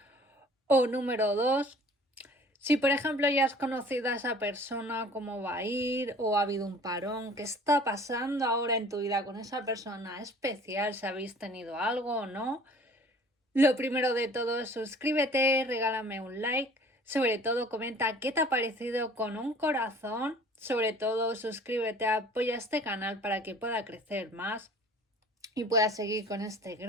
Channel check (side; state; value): both; normal; correlation 0.49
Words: O número 2. Si por ejemplo ya has conocido a esa persona, cómo va a ir, o ha habido un parón, qué está pasando ahora en tu vida con esa persona especial, si habéis tenido algo o no. Lo primero de todo es suscríbete, regálame un like, sobre todo comenta qué te ha parecido con un corazón, sobre todo suscríbete, apoya este canal para que pueda crecer más y pueda seguir con este